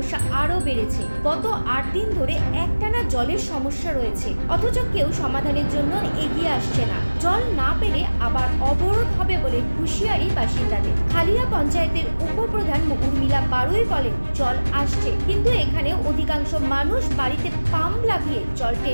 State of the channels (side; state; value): both; inverted; correlation -1.00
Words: আরও বেড়েছে। গত 8 দিন ধরে একটানা জলের সমস্যা রয়েছে, অথচ কেউ সমাধানের জন্য এগিয়ে আসছে না। জল না পেলে আবার অবরোধ হবে বলে হুঁশিয়ারি বাসিন্দাদের। খালিয়া পঞ্চায়েতের উপপ্রধান উর্মিলা বারুই বলেন, জল আসছে, কিন্তু এখানে অধিকাংশ মানুষ বাড়িতে পাম্প লাগিয়ে জল